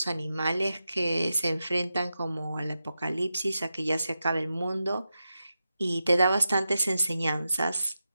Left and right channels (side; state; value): both; inverted; correlation -0.90